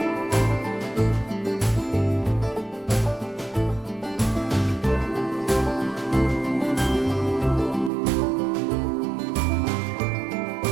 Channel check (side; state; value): left; drops out; at 7.9 s